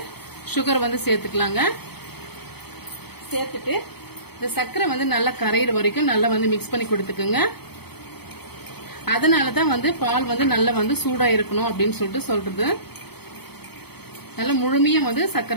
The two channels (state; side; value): late; right; 0.97 ms